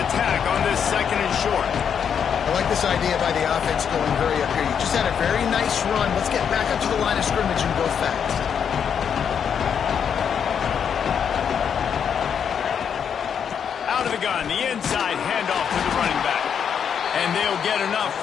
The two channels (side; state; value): right; quieter; 7.6 dB